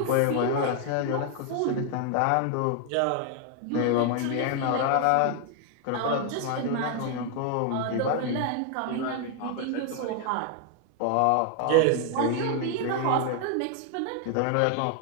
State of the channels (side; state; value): both; different; correlation 0.00